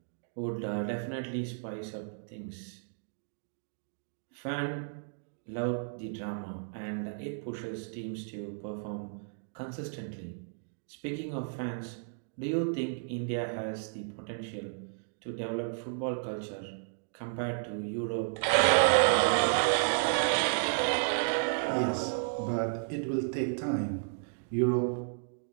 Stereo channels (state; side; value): silent; left; digital silence